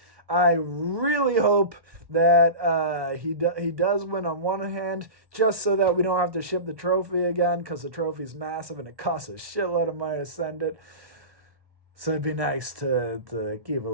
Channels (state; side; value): late; left; 1.1 ms